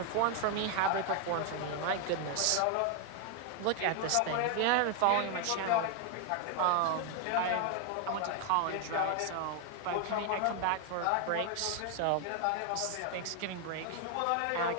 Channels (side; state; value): both; different; correlation 0.01